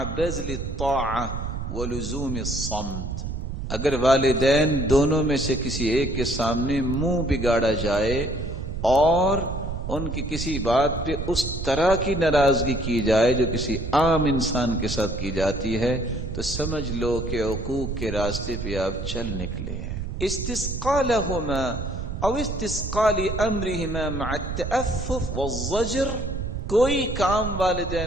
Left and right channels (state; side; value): noise; right; rumble, 5 dB below the sound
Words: بذل الطاعہ ولزوم الصمت۔ اگر والدین دونوں میں سے کسی ایک کے سامنے منہ بگاڑا جائے اور ان کی کسی بات پہ اس طرح کی ناراضگی کی جائے جو کسی عام انسان کے ساتھ کی جاتی ہے، تو سمجھ لو کہ عقوق کے راستے پہ آپ چل نکلے ہیں۔ استسقاء لہما او استسقاء لامرہما مع التأفف والزجر، کوئی کام